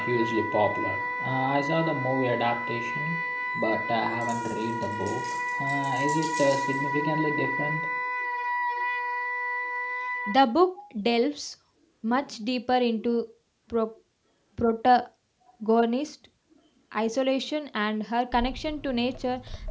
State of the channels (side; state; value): both; identical; correlation 1.00